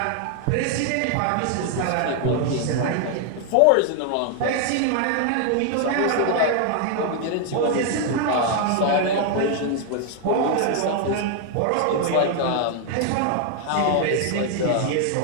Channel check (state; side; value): different; both; correlation 0.00